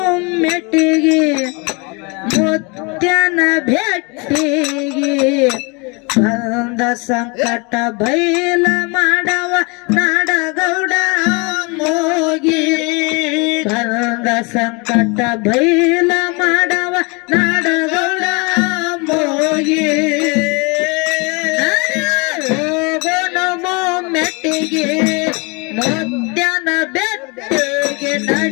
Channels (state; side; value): quieter; right; 29.8 dB